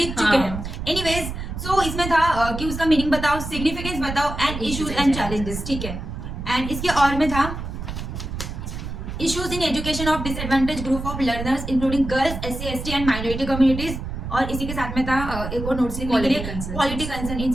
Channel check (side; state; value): right; noise; rumble, 7 dB below the sound